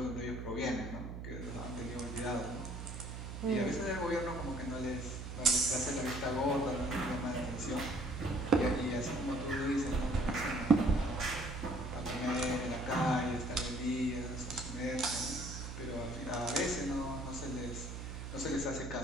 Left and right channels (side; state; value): right; noise; hum, 7 dB below the sound